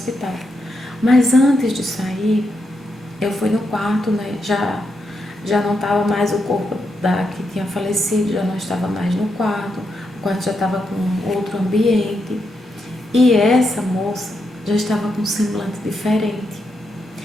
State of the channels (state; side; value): normal; both; correlation 0.83